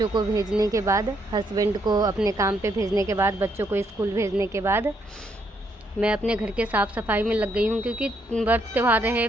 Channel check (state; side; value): normal; both; correlation 0.74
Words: को भेजने के बाद, हस्बैंड को अपने काम पे भेजने के बाद, बच्चों को स्कूल भेजने के बाद मैं अपने घर के साफ़ सफाई में लग गई हूँ। क्योंकि व्रत त्यौहार है,